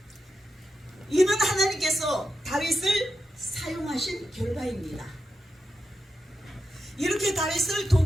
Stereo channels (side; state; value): both; normal; correlation 0.87